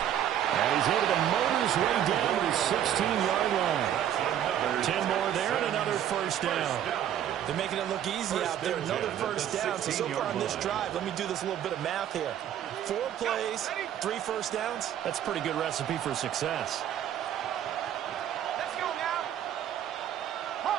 And he's able to motor his way down to the 16-yard line. 10 more there and another 1st down. They're making it look easy out there. Another 1st down. So far on this drive, let me do this little bit of math here. 4 plays, 3 1st downs. That's a pretty good recipe for success. Let's go now.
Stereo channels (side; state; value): left; quieter; 10.5 dB